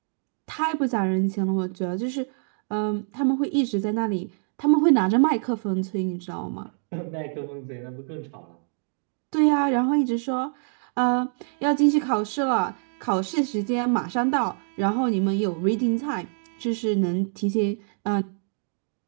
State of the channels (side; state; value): left; silent; 61 dB below the other